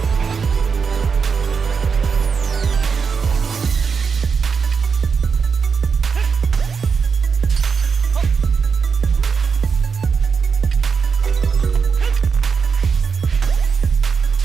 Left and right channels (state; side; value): quieter; left; 5.6 dB